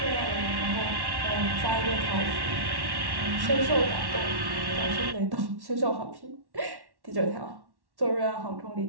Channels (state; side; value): late; left; 1.1 ms